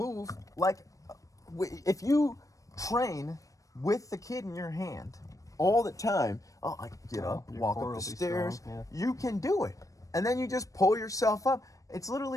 like, if you train with the kid in your hand all the time. Oh, I can get up, walk up the stairs. Strong, You can do it, and then you just pull yourself up. It's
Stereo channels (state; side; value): late; right; 0.16 ms